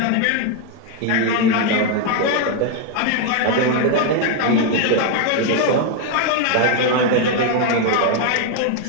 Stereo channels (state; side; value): different; both; correlation 0.01